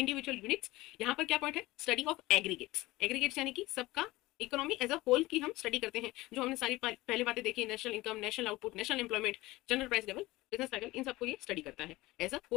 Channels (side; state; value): right; quieter; 19.4 dB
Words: यूनिट्स। यहाँ पर क्या पॉइंट है, स्टडी ऑफ एग्रीगेट्स। एग्रीगेट्स यानी कि सबका इकोनॉमी एज अ होल की हम स्टडी करते हैं। जो हमने सारी पहले बातें देखी, national income, national output, national employment, general price level, business cycle, इन सबको ये स्टडी करता है, एज अ